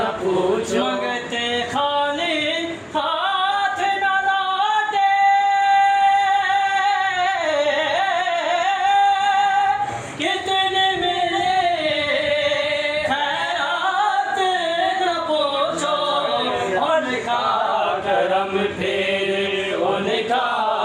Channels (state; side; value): identical; both; correlation 1.00